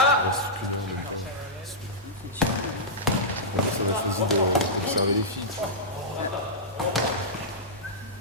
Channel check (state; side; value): normal; both; correlation -0.11